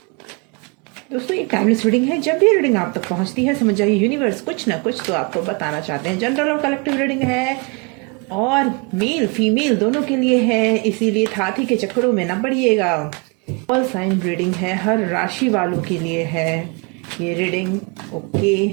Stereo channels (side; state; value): left; quieter; 31.5 dB